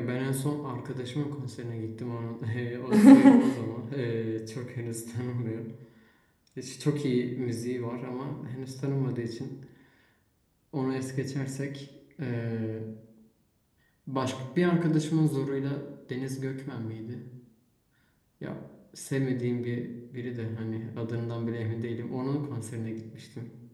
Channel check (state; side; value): identical; both; correlation 1.00